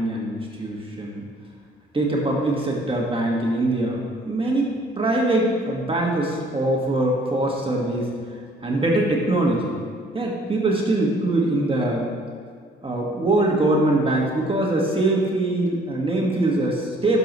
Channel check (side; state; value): both; normal; correlation 0.59